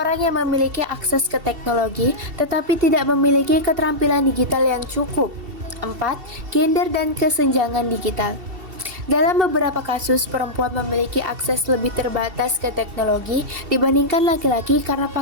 yang memiliki akses ke teknologi, tetapi tidak memiliki keterampilan digital yang cukup. 4. Gender dan kesenjangan digital. Dalam beberapa kasus, perempuan memiliki akses lebih terbatas ke teknologi dibandingkan laki-laki karena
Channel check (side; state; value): left; late; 2.7 ms